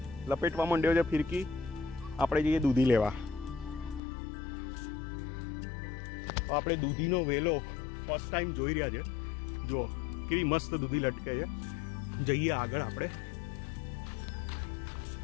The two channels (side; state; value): right; drops out; at 4.0 s